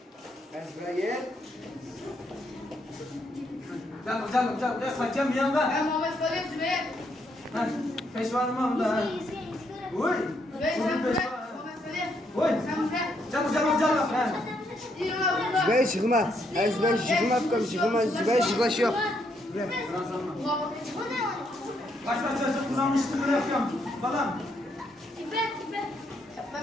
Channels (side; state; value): both; normal; correlation 0.75